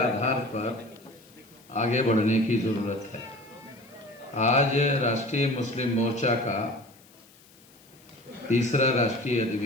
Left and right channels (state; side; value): noise; left; hiss, 27 dB below the sound